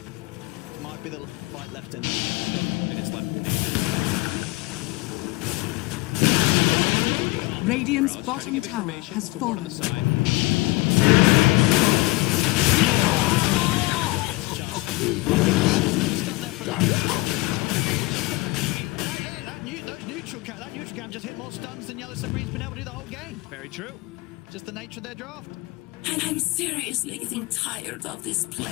might be the fight left in them. Minutes left in ages. Radiant's bottom tower has On fallen. the side. That neutral cam just hit more stuns than Yellow Submarine's been able to do the whole game. Very true. Just the nature of their draft. I'm seriously getting tired of this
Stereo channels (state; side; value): quieter; right; 22.0 dB